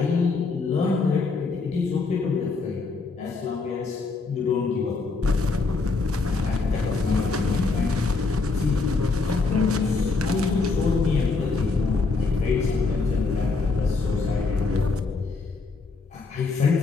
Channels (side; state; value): right; quieter; 4.1 dB